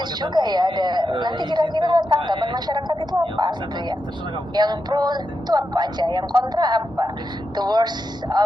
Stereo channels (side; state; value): both; normal; correlation 0.87